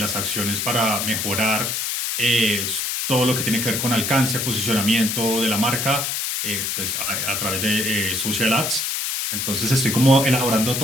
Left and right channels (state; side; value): noise; left; hiss, 1 dB below the sound